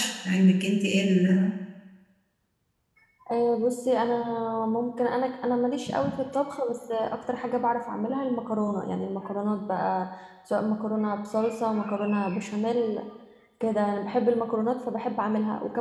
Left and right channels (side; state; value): both; identical; correlation 1.00